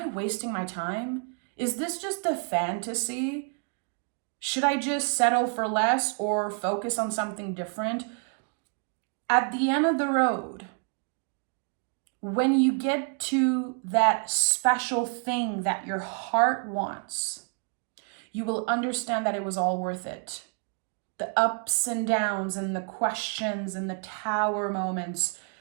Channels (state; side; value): quieter; left; 40.0 dB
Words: wasting my time? Is this just a fantasy? Should I just settle for less or focus on something different? At the end of the road, when you get to that special thing that your heart wants, you will understand that it was all worth it. The ups and downs and the questions and the tower moments,